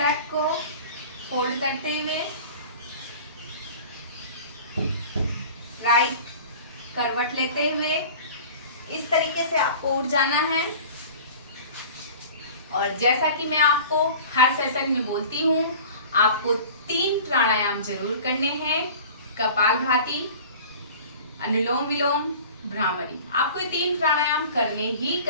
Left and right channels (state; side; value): inverted; both; correlation -0.41